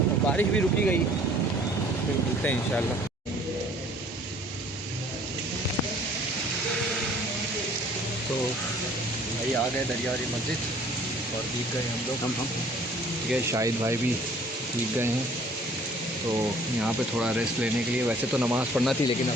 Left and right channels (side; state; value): both; normal; correlation 0.55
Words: बारिश भी रुकी गई, फिर मिलते हैं इंशाल्लाह। तो भाई आ गए दरिया वाली मस्जिद और भीग गए हम लोग, ठीक है। शाहिद भाई भी भीग गए हैं, तो यहाँ पे थोड़ा रेस्ट लेने के लिए, वैसे तो नमाज़ पढ़ना थी लेकिन